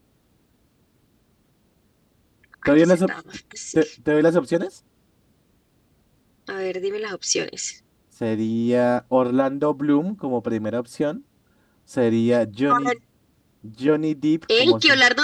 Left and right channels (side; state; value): both; identical; correlation 1.00